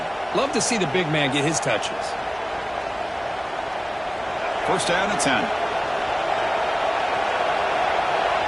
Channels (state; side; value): identical; both; correlation 1.00